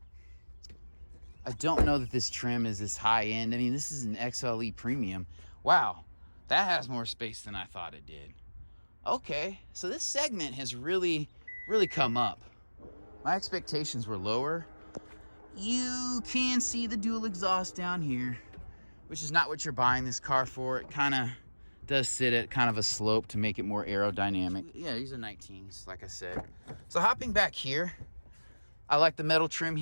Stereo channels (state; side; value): inverted; both; correlation -1.00